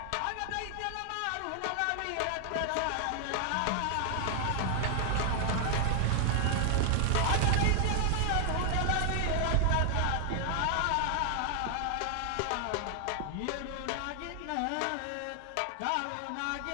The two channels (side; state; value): both; different; correlation 0.00